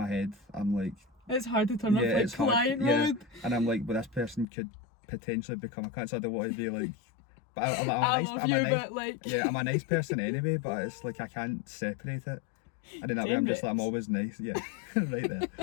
head, I'm like, It's hard to turn yeah, off it's hard. client Yeah, mode. and I'm like, well, this person could potentially become a client. So I don't want to be like, but I'm a I nice, love I'm you, a nice, but like yeah, I'm a nice person anyway. But it's like I can't separate it. And in that way, I'm just like, I'm always nice. Yeah, right there.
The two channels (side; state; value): right; drops out; at 4.5 s